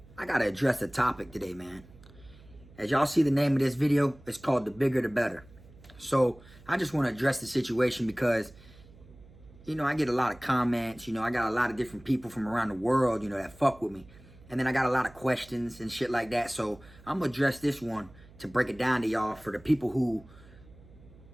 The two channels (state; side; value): noise; right; hum, 23 dB below the sound